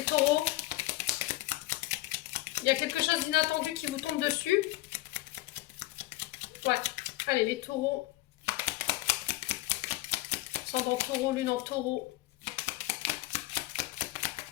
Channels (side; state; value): right; quieter; 18.5 dB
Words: taureaux. Il y a quelque chose d'inattendu qui vous tombe dessus. Ouais. Allez, les taureaux. Ascendant taureau, lune en taureau.